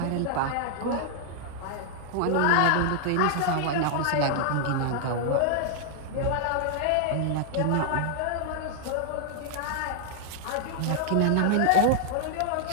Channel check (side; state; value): both; different; correlation -0.01